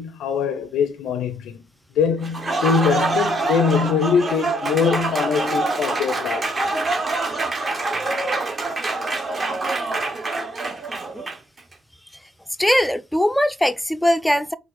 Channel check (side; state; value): both; normal; correlation 0.72